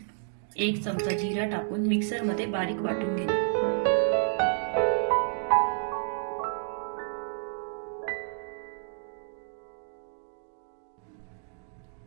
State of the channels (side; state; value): left; silent; digital silence